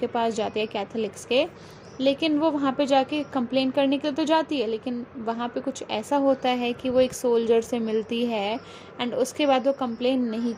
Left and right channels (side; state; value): both; identical; correlation 1.00